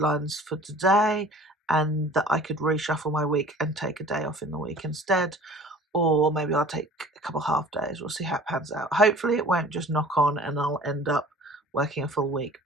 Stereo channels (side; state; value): both; normal; correlation 0.46